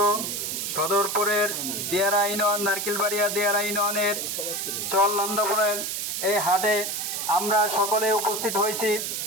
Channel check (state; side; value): noise; right; hiss, 3 dB below the sound